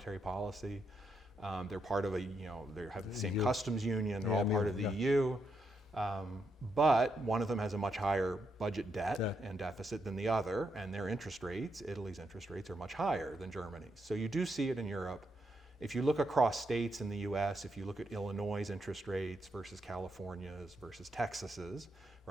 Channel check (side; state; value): both; normal; correlation 0.80